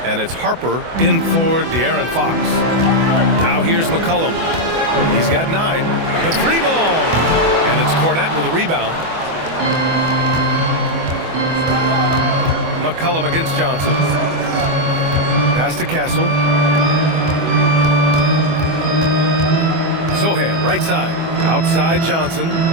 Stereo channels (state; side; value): late; left; 24 ms